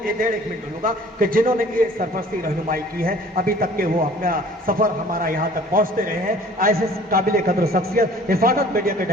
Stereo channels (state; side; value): normal; both; correlation 0.50